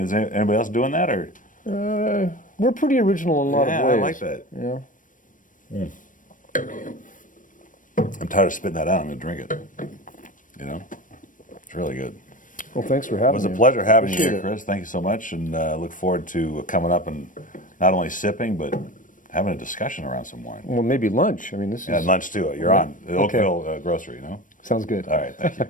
is anybody else doing that or? we're pretty original in a lot of ways. I like that. Yeah. I'm tired of spitting that out. I'm going to drink it. It's really good. Well, thanks for having me. It was a pleasure having you Appreciate here, it. Chris. Thank you so much, and look forward to coming up and not only sipping but having a discussion around some wine. Well, maybe lunch. I mean, this Yeah, is. lunch too. You're on the Okay. Oakville Grocery, Sounds good. All right, thank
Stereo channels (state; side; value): late; right; 0.38 ms